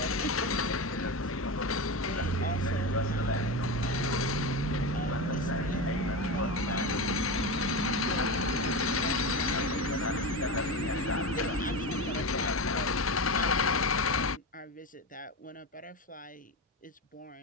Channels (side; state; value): both; normal; correlation 0.21